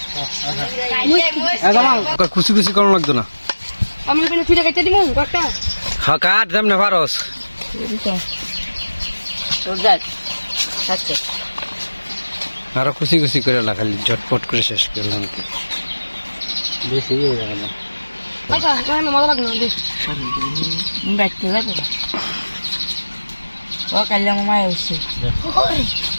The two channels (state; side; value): inverted; both; correlation -1.00